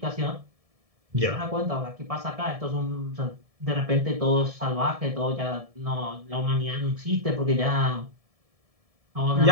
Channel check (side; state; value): left; late; 1.7 ms